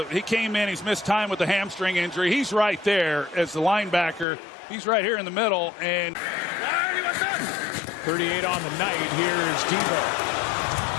he came in, he's missed time with the hamstring injury. He's right there as the linebacker. He's right here in the middle, and 38 on the night. Here is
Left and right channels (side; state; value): right; drops out; at 4.2 s